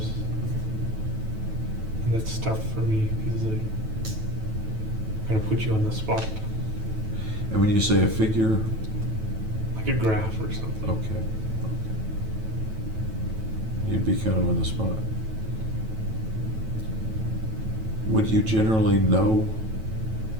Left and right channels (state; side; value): late; left; 9.2 ms